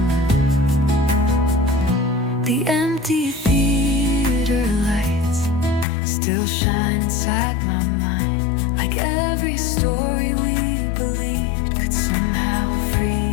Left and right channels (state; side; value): drops out; right; at 5.9 s